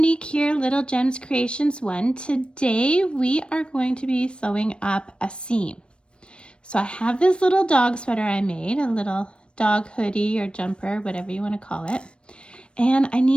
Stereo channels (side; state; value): right; late; 0.057 ms